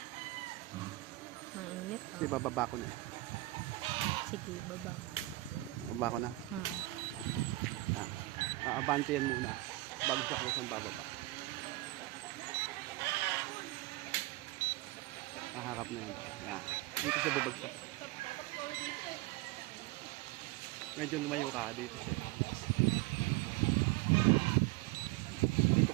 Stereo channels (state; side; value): quieter; left; 19.8 dB